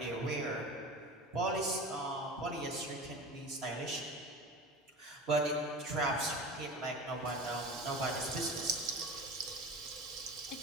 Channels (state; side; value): normal; both; correlation 0.33